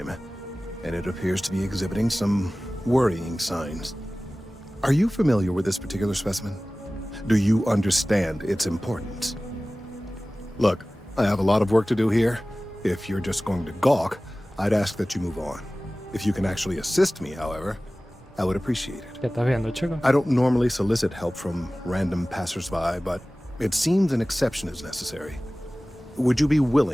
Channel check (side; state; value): both; normal; correlation 0.97